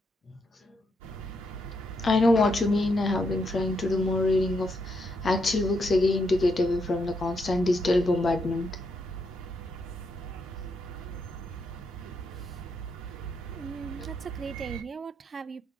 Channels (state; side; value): normal; both; correlation 0.79